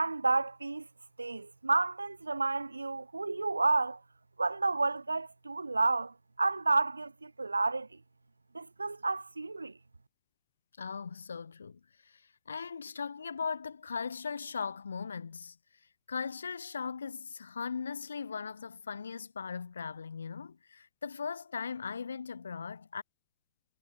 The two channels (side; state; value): both; inverted; correlation -0.94